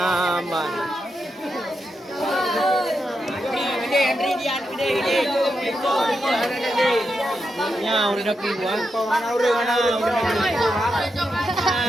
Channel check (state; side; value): normal; both; correlation 0.85